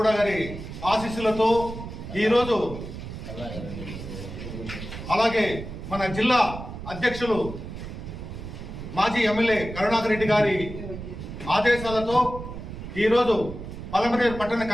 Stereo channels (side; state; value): right; noise; rumble, 10 dB below the sound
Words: గారి ఆశీస్సులతో ఈరోజు, అలాగే మన జిల్లా అధ్యక్షులు మాజీ ఎమ్మెల్యే కరుణాకర్ రెడ్డి గారి ఆదేశాలతో ఈరోజు పలమనేరు పట్టణ